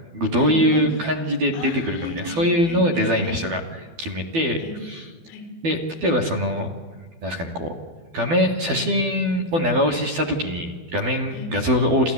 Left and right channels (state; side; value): late; left; 12 ms